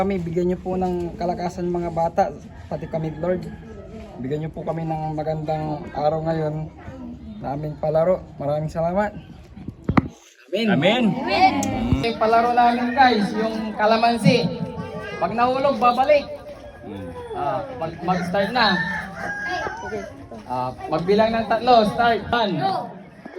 bigyan niyo po ng kalakasan mga bata, pati kami Lord. Bigyan niyo po kami ng magandang araw ngayon na aming palaro. Maraming salamat. Amen. Amen. Yung palaro namin guys, yung kalamansi. Pag nahulog, babalik. Mag-start na. Magbilang ng 3, start. 1, 2,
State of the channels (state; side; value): identical; both; correlation 1.00